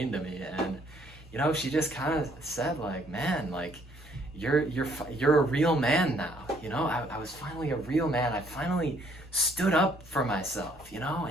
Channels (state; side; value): normal; both; correlation 0.65